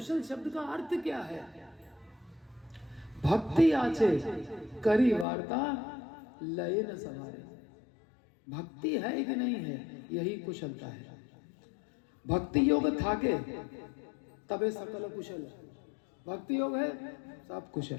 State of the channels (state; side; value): drops out; right; at 5.2 s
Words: शब्द का अर्थ क्या है? भक्ति आछे करी वार्ता लय न सवारे। भक्ति है कि नहीं है, यही कुशलता है। भक्ति योग थाके तबे सकल कुशल, भक्ति योग है सब कुशल।